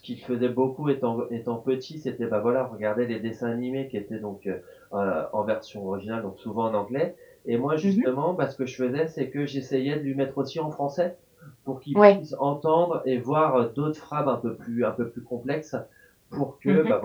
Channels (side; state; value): both; identical; correlation 1.00